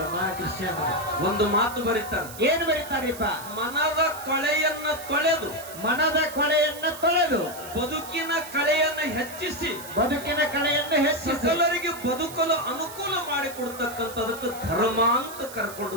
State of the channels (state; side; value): noise; right; hiss, 14 dB below the sound